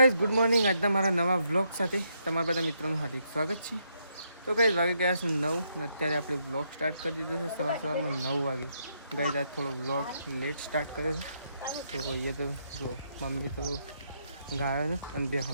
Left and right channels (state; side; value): inverted; both; correlation -0.77